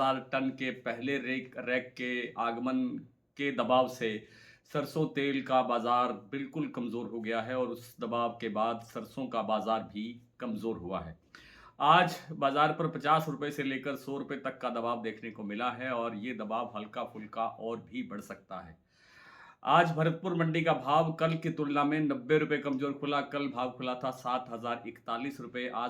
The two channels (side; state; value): both; identical; correlation 1.00